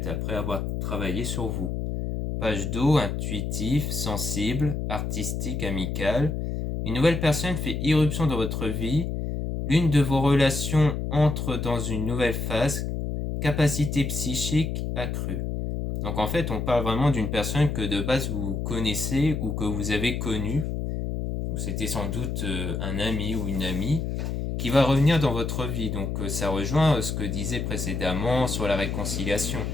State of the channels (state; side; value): noise; left; hum, 2 dB below the sound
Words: après avoir travaillé sur vous. Page d'eau, intuitif, sensible, artistique, amical. Une nouvelle personne fait irruption dans votre vie. L'une de vos relations entre dans une nouvelle phase. Capacité psychique accrue. Donc en fait, on parle vraiment d'une personne que de base vous connaissez ou que vous avez connue. C'était sans doute un ami ou une amie qui va revenir dans votre vie. Donc ça rejoint ce que disait précédemment sur la réconciliation.